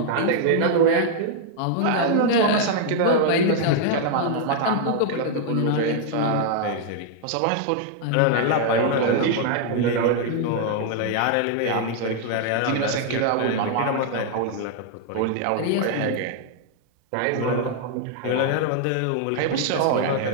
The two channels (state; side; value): different; both; correlation 0.00